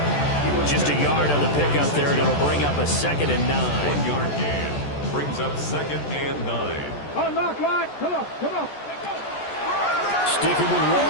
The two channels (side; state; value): right; late; 14 ms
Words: Just a yard on the pickup there, and it'll bring up a 2nd and 9. 1-yard gain brings up 2nd and 9. Unlock line. Come on. Sticking with